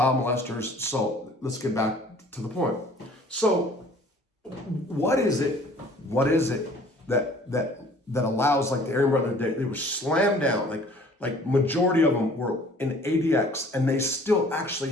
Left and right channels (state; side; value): normal; both; correlation 0.52